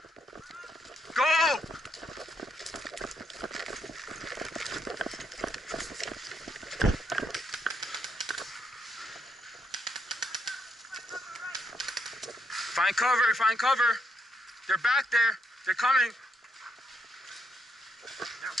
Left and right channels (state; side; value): normal; both; correlation 0.76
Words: Go. Find cover, find cover. They're back there. They're coming. They're